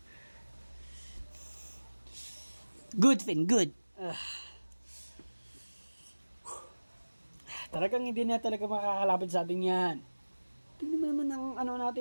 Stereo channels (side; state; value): both; inverted; correlation -1.00